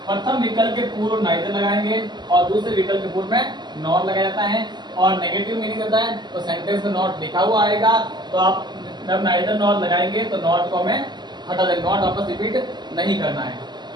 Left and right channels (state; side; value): late; left; 0.21 ms